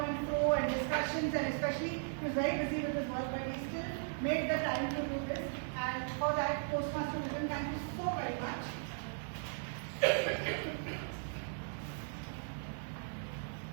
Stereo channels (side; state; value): left; silent; digital silence